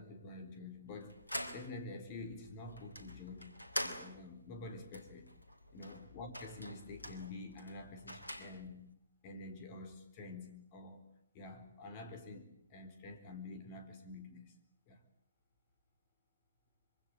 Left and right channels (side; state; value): both; inverted; correlation -0.60